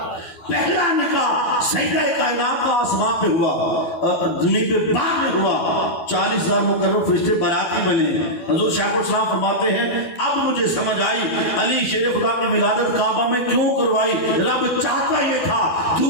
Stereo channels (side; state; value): right; late; 12 ms